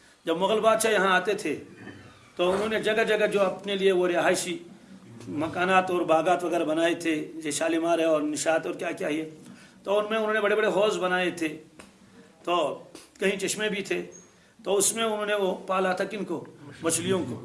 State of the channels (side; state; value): both; identical; correlation 1.00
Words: جب مغل بادشاہ یہاں آتے تھے تو انہوں نے جگہ جگہ جو اپنے لیے وہ رہائشی مکانات اور باغات وغیرہ بنائے تھے، جیسے شالیمار ہے اور نشاط اور کیا کیا ہے، تو ان میں انہوں نے بڑے بڑے حوض بنائے تھے، تو کہیں چشمے بھی تھے، تو اس میں انہوں نے وہ پالا تھا کن کو، مچھلیوں کو.